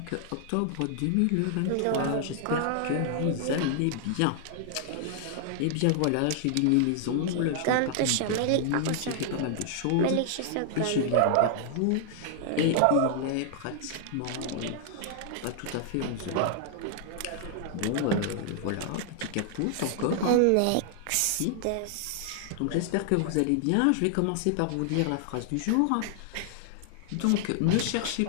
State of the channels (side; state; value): both; different; correlation 0.00